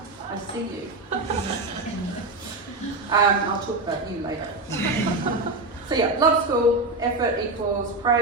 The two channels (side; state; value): left; quieter; 3.0 dB